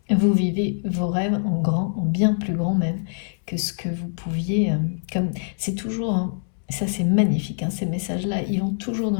Vous vivez vos rêves en grand, en bien plus grand même que ce que vous pouviez. Comme c'est toujours, hein, ça c'est magnifique. Hein, ces messages-là, ils vont toujours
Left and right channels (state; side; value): silent; right; 63 dB below the other